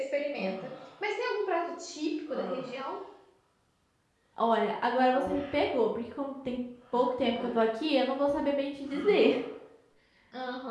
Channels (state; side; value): identical; both; correlation 1.00